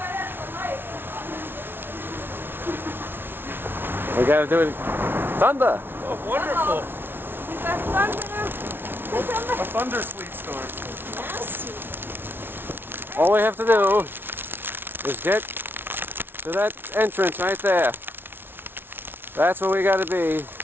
We gotta do it. Thunder! Oh, wonderful. You got thunder. A thunder sleet storm. Nasty. All we have to do is get to that entrance right there. That's where we gotta be.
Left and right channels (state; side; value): late; left; 0.11 ms